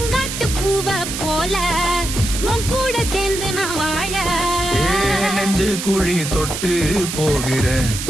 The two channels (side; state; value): right; noise; hiss, 5 dB below the sound